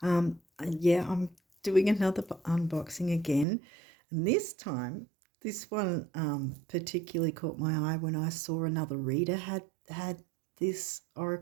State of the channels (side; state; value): left; drops out; at 3.5 s